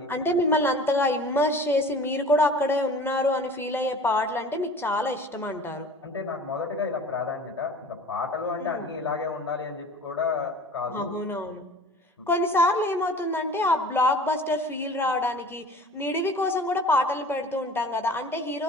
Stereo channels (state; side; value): normal; both; correlation 0.43